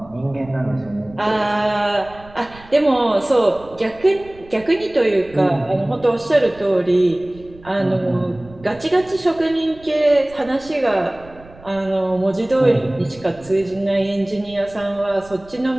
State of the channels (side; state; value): right; noise; rumble, 22 dB below the sound